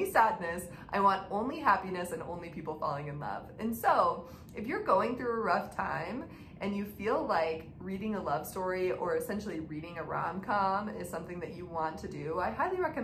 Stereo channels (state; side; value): identical; both; correlation 1.00